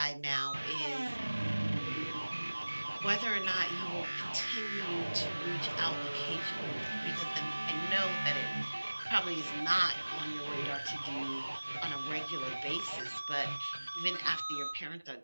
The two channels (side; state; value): both; inverted; correlation -1.00